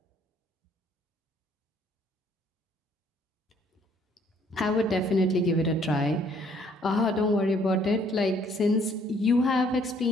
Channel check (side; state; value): both; normal; correlation 0.63